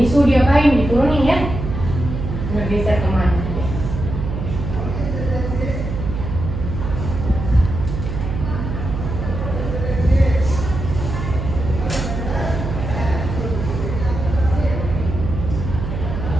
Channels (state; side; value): noise; right; hum, 5 dB below the sound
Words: suhu diapain? Diturunin ya. Bergeser kemana?